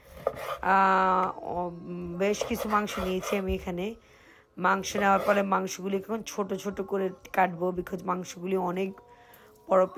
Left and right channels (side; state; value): both; identical; correlation 1.00